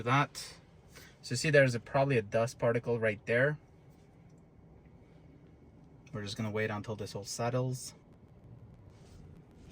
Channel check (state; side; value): identical; both; correlation 1.00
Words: that. So see, there's probably a dust particle right there. We're just gonna wait until this all settles.